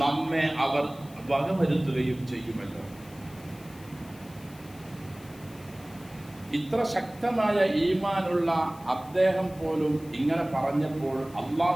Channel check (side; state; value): left; noise; hiss, 23 dB below the sound